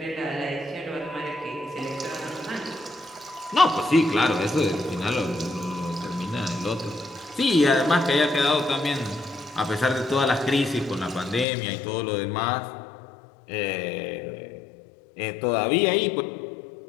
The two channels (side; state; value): right; drops out; at 11.5 s